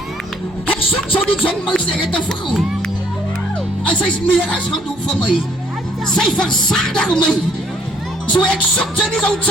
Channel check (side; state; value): both; normal; correlation 0.64